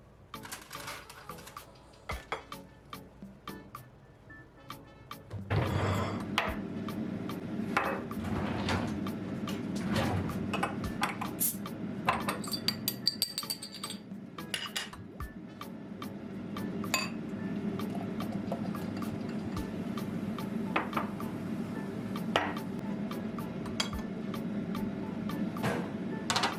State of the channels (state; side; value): identical; both; correlation 1.00